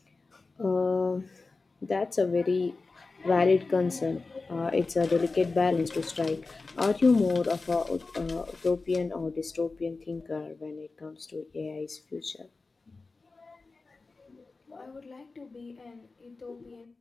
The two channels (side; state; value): right; quieter; 3.9 dB